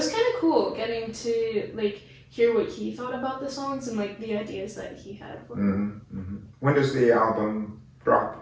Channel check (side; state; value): both; identical; correlation 1.00